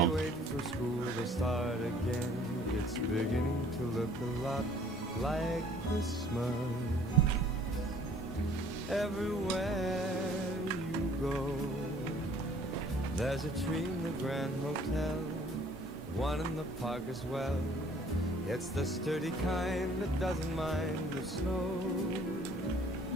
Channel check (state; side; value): normal; both; correlation 0.56